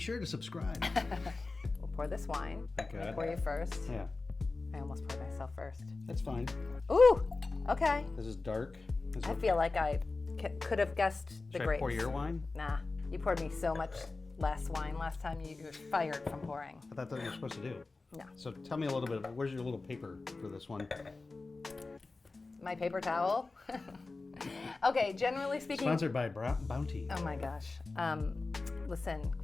to subscribe. We'll pour this wine. Thank I'm gonna God. pour you first. Yeah. I almost poured myself first. That's fine. Ooh. Okay. This is dark. I feel like I could have guessed the Should grapes. I pour your wine? Nah. You poured me so much less wine last time. You were fired from pouring. I thought that's what you're supposed to do. No. So tell me a little bit. Where's your little paper for this one? My paper towel. Okay, generally speaking. Sponsored by Bounty. Oh my gosh. Listen,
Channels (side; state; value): right; quieter; 3.6 dB